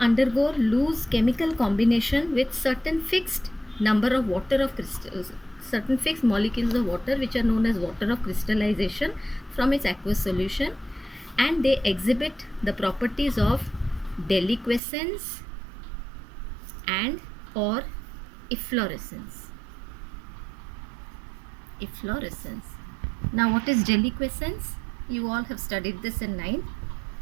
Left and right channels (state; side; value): drops out; left; at 14.8 s